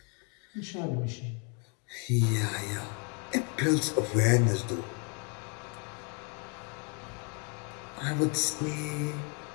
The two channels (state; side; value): quieter; right; 35.0 dB